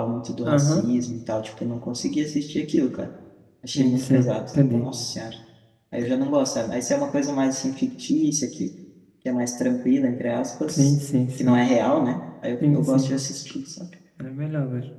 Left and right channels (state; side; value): identical; both; correlation 1.00